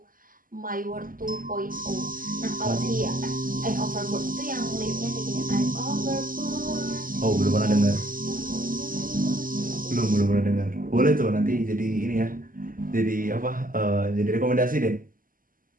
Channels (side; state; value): left; late; 0.41 ms